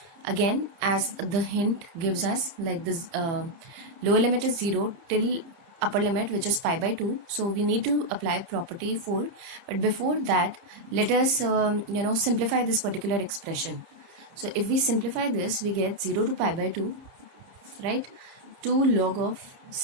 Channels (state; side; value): late; left; 30 ms